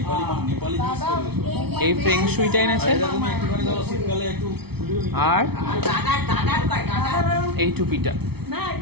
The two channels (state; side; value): late; left; 0.98 ms